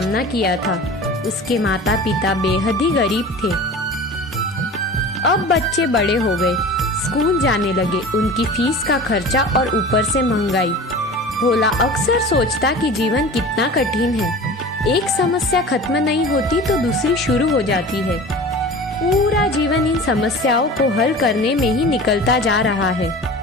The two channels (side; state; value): both; normal; correlation 0.37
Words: किया था। उसके माता पिता बेहद ही गरीब थे। अब बच्चे बड़े हो गए, स्कूल जाने लगे, उनकी फीस का खर्चा और ऊपर से महंगाई। भोला अक्सर सोचता कि जीवन कितना कठिन है। एक समस्या खत्म नहीं होती तो दूसरी शुरू हो जाती है। पूरा जीवन इन समस्याओं को हल करने में ही निकलता जा रहा है।